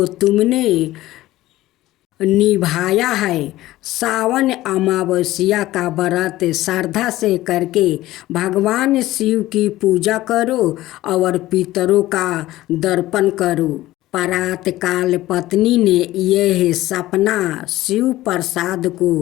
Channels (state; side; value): quieter; right; 16.3 dB